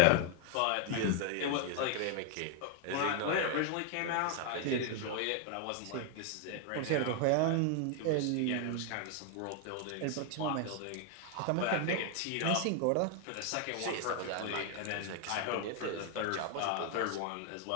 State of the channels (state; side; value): different; both; correlation 0.00